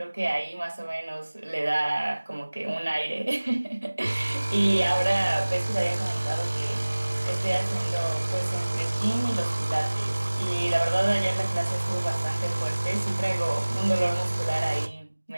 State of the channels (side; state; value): both; inverted; correlation -1.00